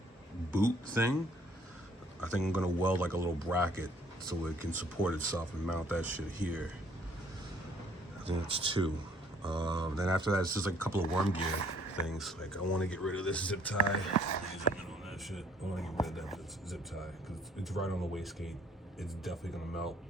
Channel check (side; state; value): both; normal; correlation 0.61